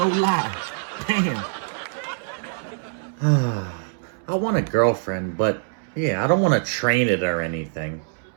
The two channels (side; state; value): left; silent; 63 dB below the other